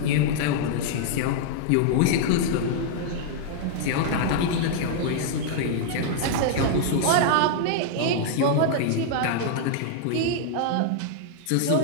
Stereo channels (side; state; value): both; different; correlation -0.01